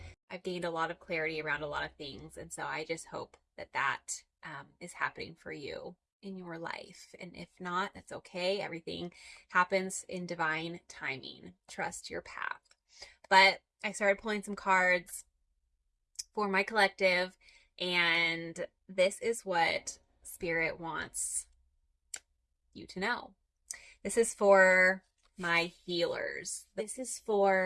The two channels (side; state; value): both; identical; correlation 1.00